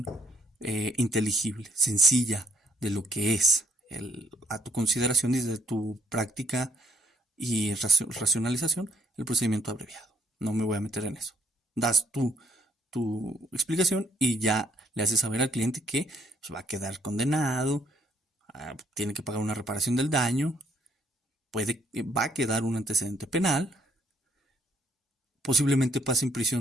inteligible, sencilla de lo que es a tu consideración y de tu práctica y racionalización el procedimiento abreviado. No me voy a meter en eso. Das tu explicación y ya le haces saber al cliente que pues, va a quedar condenado, tiene que pagar una reparación del daño, va a quedar un antecedente penal, posiblemente pase en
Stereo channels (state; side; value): normal; both; correlation 0.68